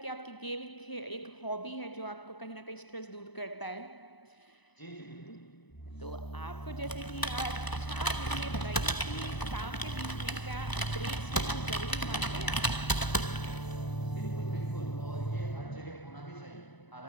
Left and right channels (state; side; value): late; right; 1.0 ms